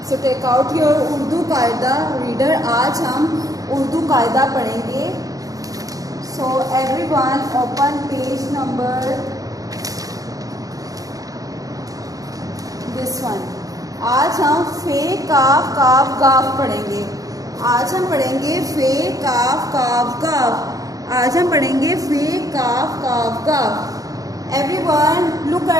So take out your Urdu Qaida reader. आज हम उर्दू कायदा पढ़ेंगे. So everyone open page number this one. आज हम फे काफ काफ गाफ पढ़ेंगे. आज हम पढ़ेंगे फे काफ काफ गाफ. आज हम पढ़ेंगे फे काफ काफ गाफ. Everyone look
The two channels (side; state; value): left; late; 0.17 ms